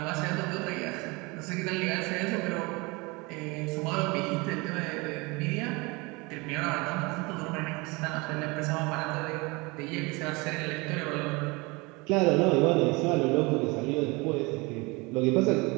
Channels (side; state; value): left; quieter; 25.9 dB